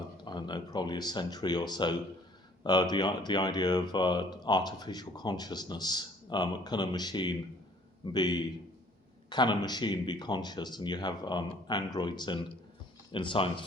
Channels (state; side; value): normal; both; correlation 0.57